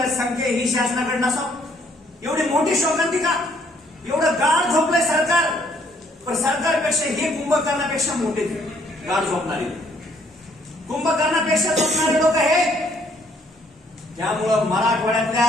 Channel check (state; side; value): normal; both; correlation 0.65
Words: संख्या ही शासनाकडे नसावं? एवढी मोठी शोकांतिका, एवढं गाढ झोपलंय सरकार. पण सरकारपेक्षा हे कुंभकर्णापेक्षा मोठे गाढ झोपणारे, कुंभकर्णापेक्षा झोपणारे लोक हे. त्यामुळं